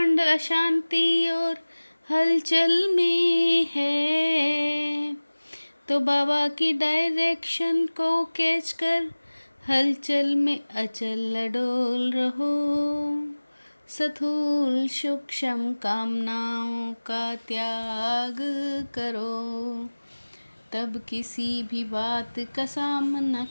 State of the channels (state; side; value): inverted; both; correlation -1.00